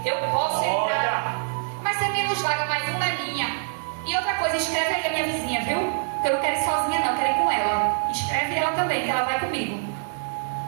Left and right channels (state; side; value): silent; left; digital silence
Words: Eu posso entrar. Mas você me nos vaga, mas uma é minha. E outra coisa, escreve aí a minha vizinha, viu? Porque eu não quero ir sozinha, não. Eu quero ir com ela. Escreve ela também, que ela vai comigo.